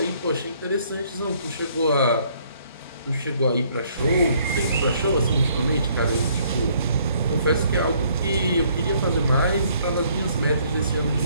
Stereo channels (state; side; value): inverted; both; correlation -0.64